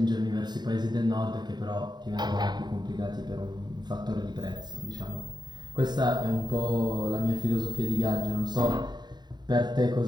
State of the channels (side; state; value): left; late; 0.21 ms